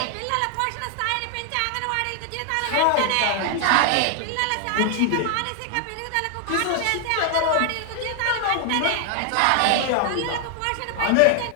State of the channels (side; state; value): both; different; correlation 0.00